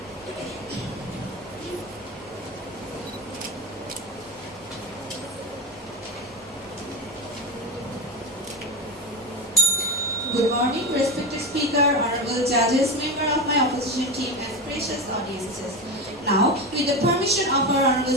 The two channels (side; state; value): right; noise; hum, 28 dB below the sound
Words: Good morning, respected Speaker, honorable judges, member of my opposition team, and precious audiences. Now, with the permission of our honorable